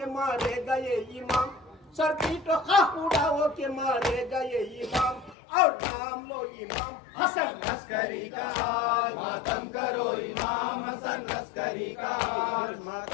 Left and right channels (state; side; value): drops out; right; at 5.4 s